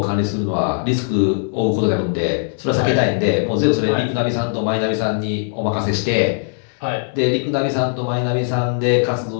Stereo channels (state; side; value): silent; right; digital silence